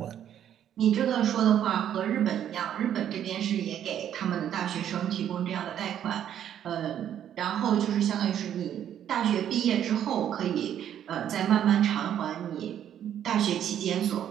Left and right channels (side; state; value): left; quieter; 10.1 dB